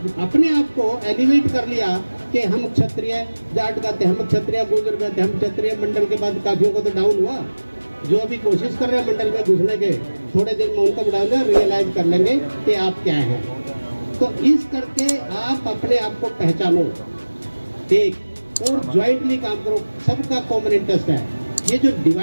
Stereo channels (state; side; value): inverted; both; correlation -1.00